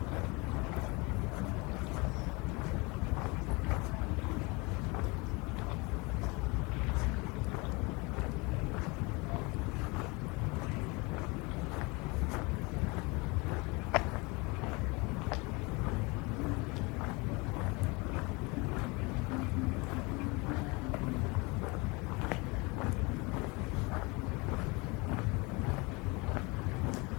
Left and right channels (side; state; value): right; quieter; 26.7 dB